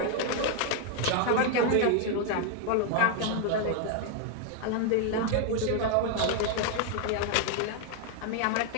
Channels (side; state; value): both; different; correlation 0.00